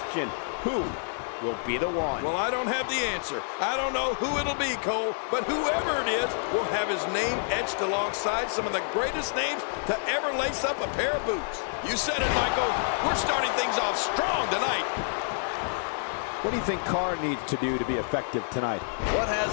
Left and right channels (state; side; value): silent; right; digital silence